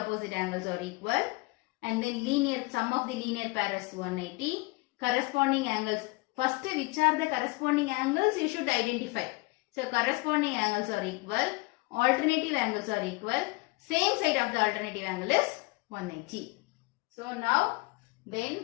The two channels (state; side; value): quieter; right; 24.7 dB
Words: angles are equal, and then linear sum of the linear pair is 180. Corresponding angles, first which are the corresponding angles you should identify. So corresponding angles are equal, alternative angles are equal, same side of the alternative angle is 180. So now then